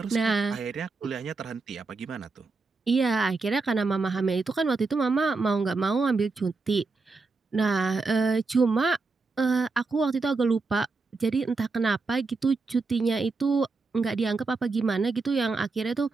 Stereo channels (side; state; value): left; quieter; 4.0 dB